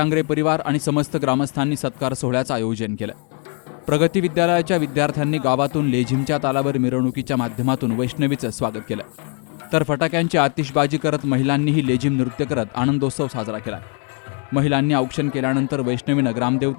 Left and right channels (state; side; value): quieter; right; 38.5 dB